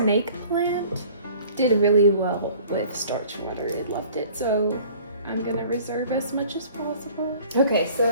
plant did really well with starch water. It loved it. So I'm gonna reserve as much as possible. Okay,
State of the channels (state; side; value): inverted; both; correlation -0.50